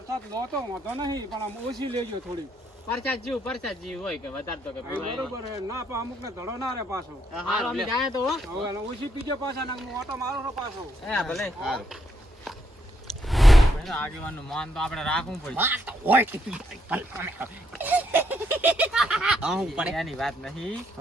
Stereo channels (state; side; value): normal; both; correlation 0.75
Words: લો તો વાંધો નહીં પણ આમ ઓછી લેજો થોડી પરસાદ જેવું હોય કે વધારે તો કે પીવાય. બરોબર હે ના પણ અમુક ને ધડો ના રે પાછો હારું અમે જાય તો હો. હવે એને ઓછી પીજો પાછા ને હું ઓટો મારો છો પાછો હે ભલે. આગેવાનનું માન તો આપણે રાખવું પડે. હું પડે એની વાત નહીં